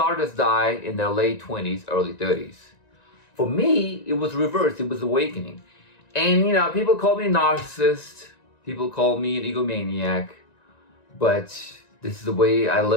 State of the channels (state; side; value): late; right; 1.9 ms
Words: artists die in their late 20s, early 30s. For me, it was reversed. It was awakening. And, you know, people call me a narcissist. People call me an egomaniac. But this is the way I